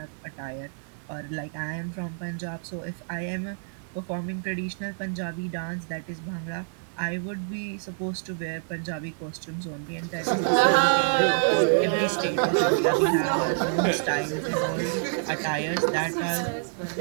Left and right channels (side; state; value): left; silent; digital silence